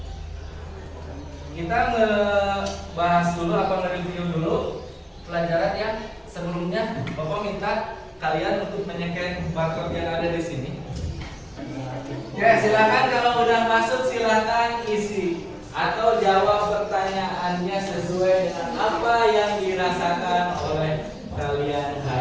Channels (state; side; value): identical; both; correlation 1.00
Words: kita ngebahas dulu apa nge-review dulu pelajaran yang sebelumnya. Bapak minta kalian untuk menyesuaikan barcode yang ada di sini. Ya, silakan kalau udah masuk silakan isi atau jawab pertanyaannya sesuai dengan apa yang dirasakan oleh kalian